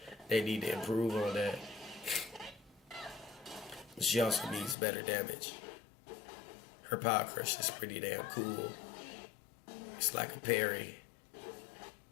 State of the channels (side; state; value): right; drops out; at 4.8 s